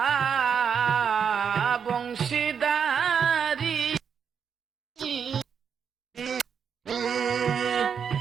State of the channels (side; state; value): left; quieter; 7.0 dB